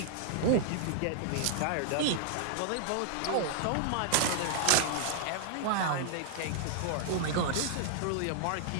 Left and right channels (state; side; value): different; both; correlation -0.01